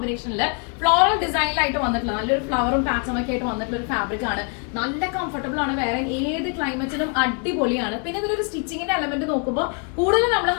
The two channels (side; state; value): right; quieter; 38.4 dB